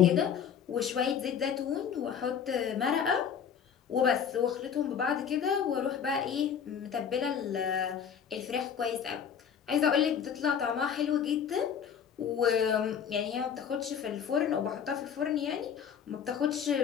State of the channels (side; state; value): right; quieter; 7.8 dB